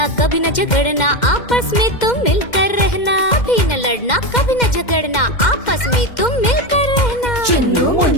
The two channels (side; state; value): right; late; 2.1 ms